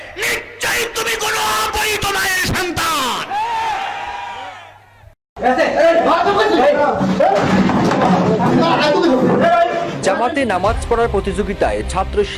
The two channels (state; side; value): identical; both; correlation 1.00